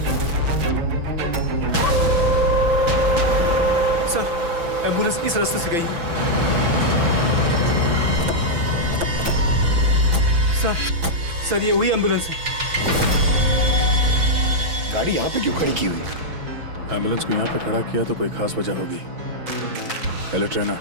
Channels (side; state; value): left; late; 6.0 ms